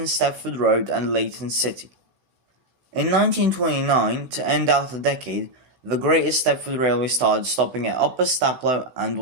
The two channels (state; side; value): late; left; 16 ms